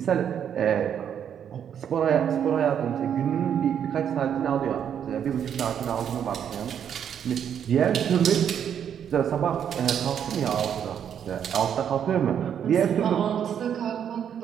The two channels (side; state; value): left; quieter; 8.7 dB